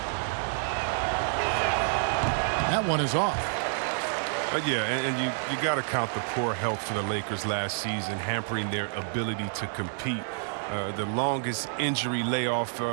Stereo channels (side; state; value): left; silent; 59 dB below the other